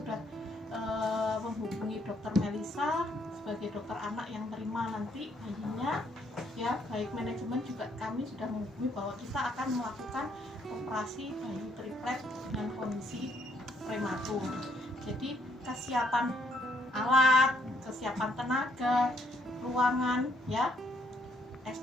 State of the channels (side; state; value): both; normal; correlation 0.70